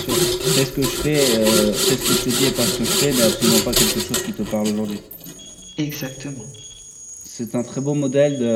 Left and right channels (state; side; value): identical; both; correlation 1.00